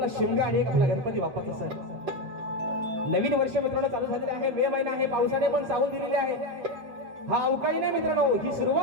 शिमगा आणि एक आपला गणपती बाप्पाचा सण. नवीन वर्ष मित्रांनो चालू झालेले आहे. मे महिना आहे. पावसाने पण सावून दिलेली आहे. हा अवकाळी नाही मित्रांनो, ही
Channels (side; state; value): left; late; 7.5 ms